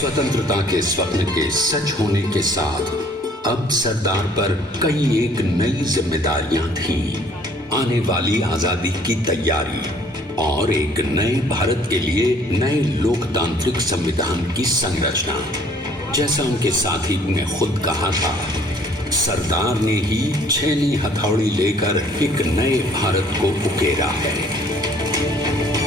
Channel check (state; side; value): normal; both; correlation 0.58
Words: के स्वप्न के सच होने के साथ अब सरदार पर कई एक नई जिम्मेदारियां थीं। आने वाली आजादी की तैयारी और एक नए भारत के लिए नए लोकतांत्रिक संविधान की संरचना। जैसा उनके साथी ने खुद कहा था, सरदार ने ही 6वीं हथौड़ी लेकर एक नए भारत को उकेरा है।